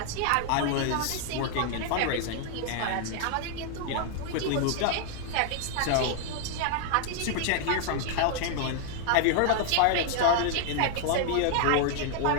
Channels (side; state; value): both; different; correlation 0.00